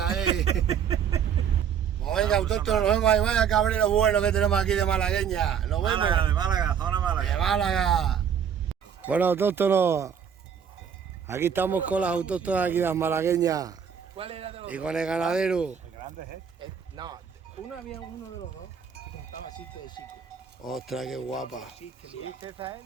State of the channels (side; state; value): left; quieter; 7.8 dB